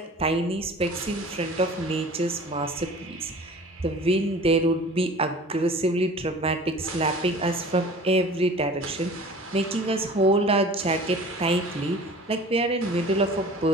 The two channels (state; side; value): normal; both; correlation 0.43